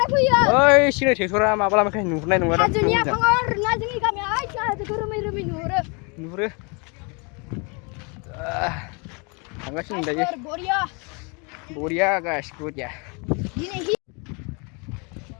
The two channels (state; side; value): quieter; right; 32.1 dB